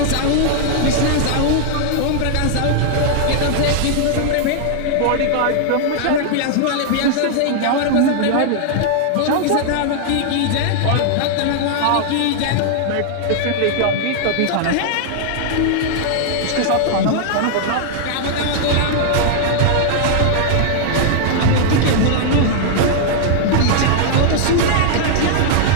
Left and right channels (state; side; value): different; both; correlation -0.01